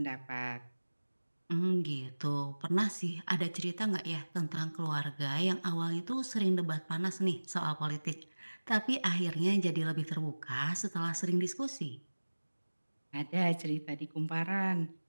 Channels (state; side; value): inverted; both; correlation -1.00